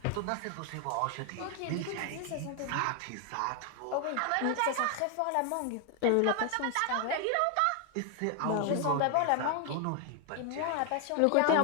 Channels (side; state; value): both; different; correlation 0.01